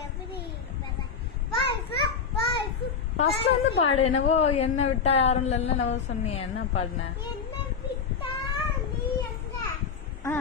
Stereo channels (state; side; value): quieter; right; 5.9 dB